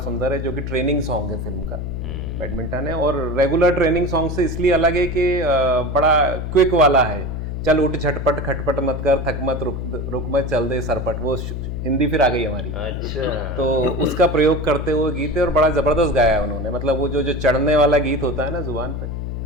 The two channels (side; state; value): left; noise; hum, 5 dB below the sound